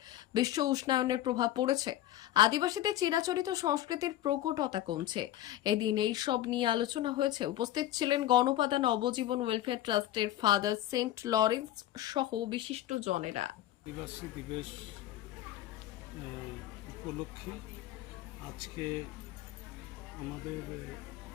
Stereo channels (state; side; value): quieter; right; 13.5 dB